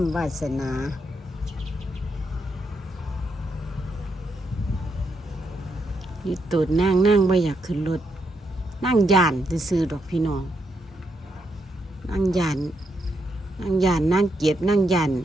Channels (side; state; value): both; normal; correlation 0.80